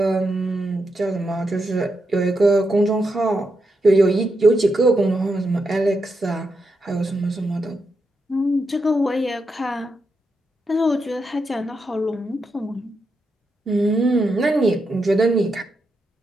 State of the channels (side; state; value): both; normal; correlation 0.84